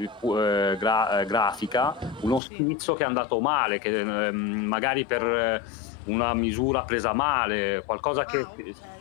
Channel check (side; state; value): right; drops out; at 2.4 s